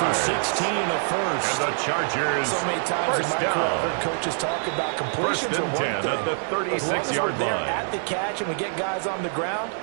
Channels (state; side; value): silent; left; digital silence